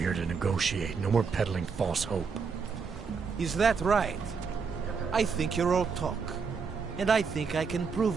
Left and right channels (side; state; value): left; quieter; 5.5 dB